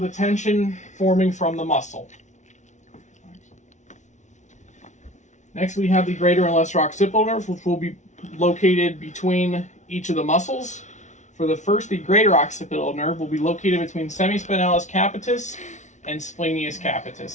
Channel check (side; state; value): right; late; 0.35 ms